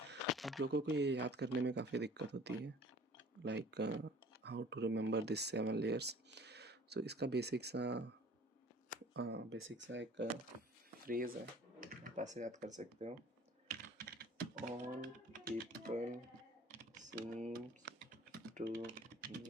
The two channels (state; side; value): normal; both; correlation 0.49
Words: आप लोगों को ये याद करने में काफ़ी दिक्कत होती है, like how to remember this 7 layers. So इसका बेसिक सा एक फ्रेज है, आप ऐसे याद कर सकते हो. All people seems to